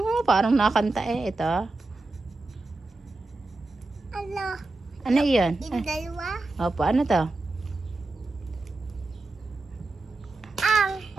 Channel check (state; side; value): quieter; left; 3.2 dB